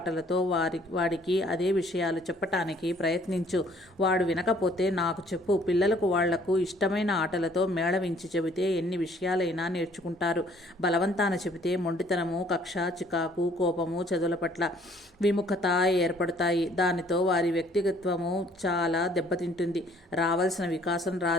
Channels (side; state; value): both; normal; correlation 0.60